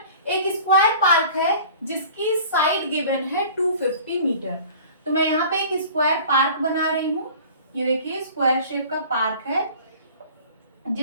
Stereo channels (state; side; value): inverted; both; correlation -0.45